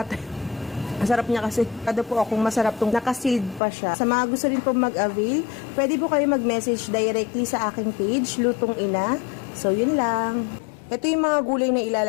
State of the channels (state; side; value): drops out; right; at 3.6 s